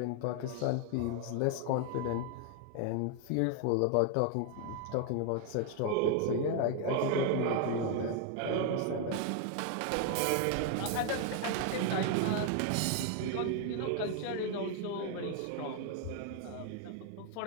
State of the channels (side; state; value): both; different; correlation 0.00